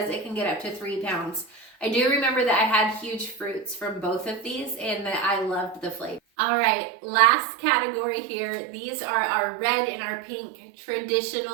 it can get up to 3 pounds. I do remember that I had huge fruits from both of these and that I loved the flavor. All right, last category here. These are our red and our pink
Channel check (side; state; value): left; drops out; at 6.2 s